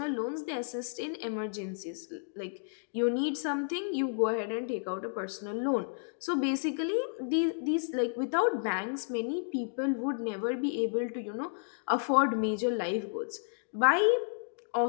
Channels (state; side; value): silent; right; digital silence